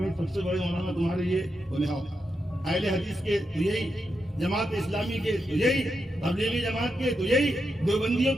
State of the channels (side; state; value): both; normal; correlation 0.85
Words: سب سے بڑے مولانا تمہارے یہ بولے ہاں اہل حدیث کے تو یہی، جماعت اسلامی کے تو یہی، تبلیغی جماعت کے تو یہی، دیوبندیوں